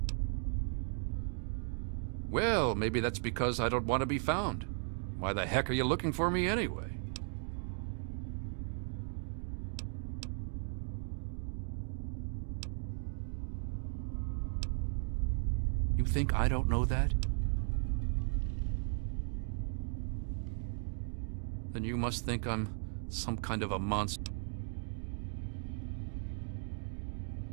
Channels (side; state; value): left; silent; 53 dB below the other